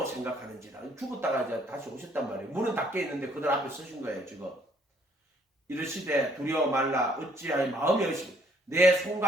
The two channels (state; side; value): normal; both; correlation 0.64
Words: 생각하는지라. 죽었다가 이제 다시 오셨단 말이에요. 문은 닫혀 있는데 그들 앞에 서신 거예요. 지금 이르시되 두려워 말라. 어찌하여 마음이 의심 내